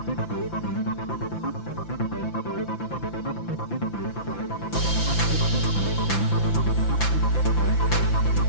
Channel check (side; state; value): right; late; 5.9 ms